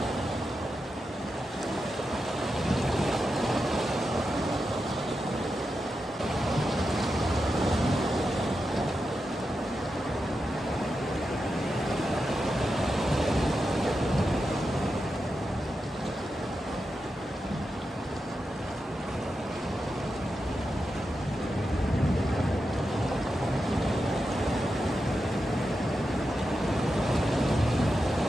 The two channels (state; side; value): normal; both; correlation 0.88